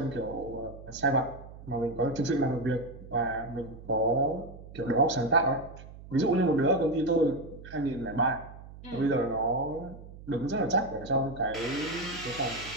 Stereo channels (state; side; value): noise; right; hum, 16 dB below the sound